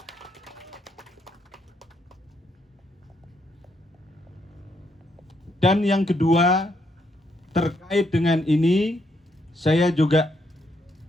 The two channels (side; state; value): both; normal; correlation 0.76